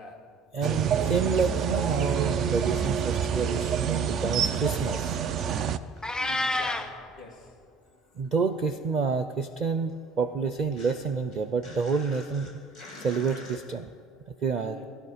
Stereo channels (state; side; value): quieter; left; 5.1 dB